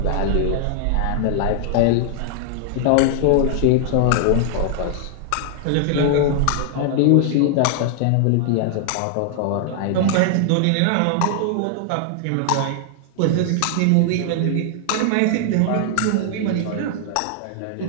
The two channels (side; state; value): both; different; correlation 0.00